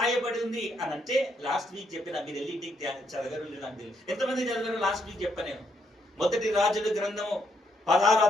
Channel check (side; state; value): both; normal; correlation 0.75